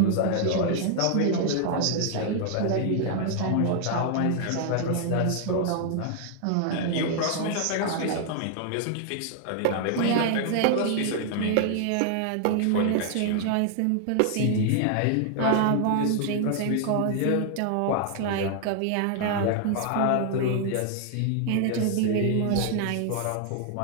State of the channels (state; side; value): different; both; correlation 0.00